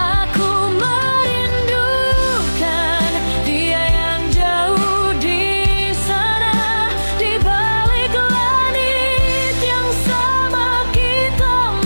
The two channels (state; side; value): inverted; both; correlation -1.00